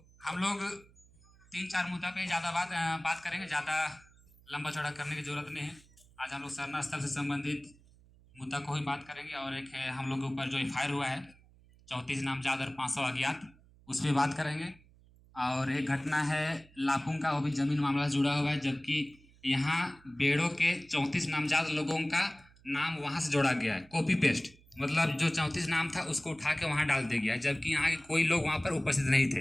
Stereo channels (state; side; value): noise; right; hum, 27 dB below the sound